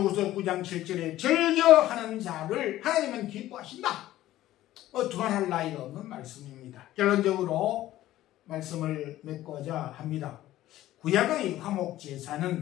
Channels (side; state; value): right; quieter; 14.6 dB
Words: 9장 7절에 즐겨하는 자를 하나님은 기뻐하신다. 두말할 나위가 없는 말씀입니다. 결론적으로 말씀을 맺고자 합니다. 구약의